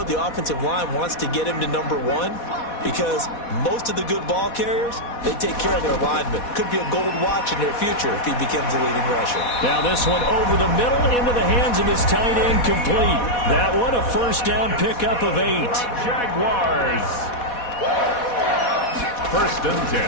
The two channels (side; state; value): right; late; 4.1 ms